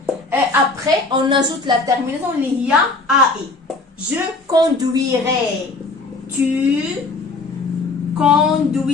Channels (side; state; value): right; quieter; 3.5 dB